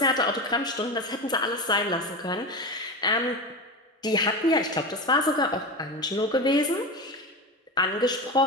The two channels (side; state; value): both; normal; correlation 0.23